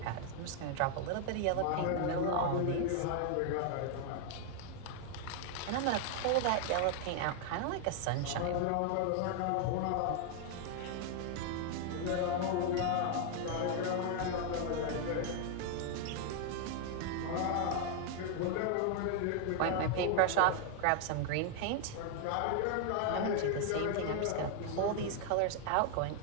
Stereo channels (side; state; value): both; different; correlation 0.00